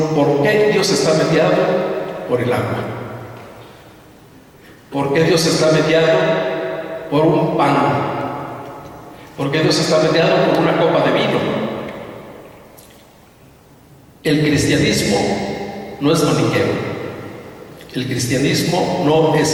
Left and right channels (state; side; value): identical; both; correlation 1.00